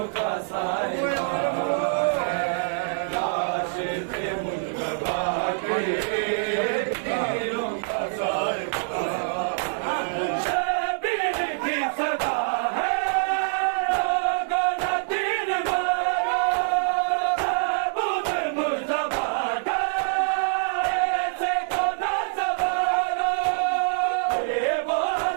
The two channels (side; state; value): left; silent; 61 dB below the other